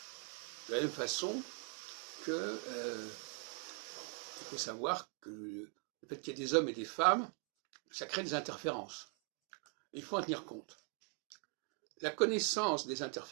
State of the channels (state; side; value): quieter; left; 32.8 dB